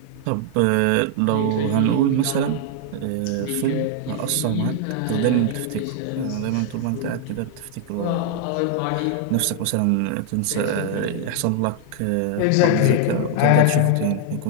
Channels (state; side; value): different; both; correlation 0.00